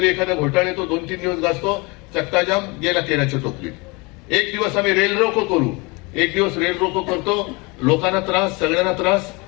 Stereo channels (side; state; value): right; quieter; 27.2 dB